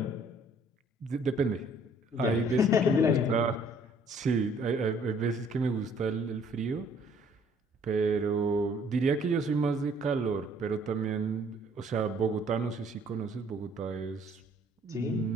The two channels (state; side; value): normal; both; correlation 0.60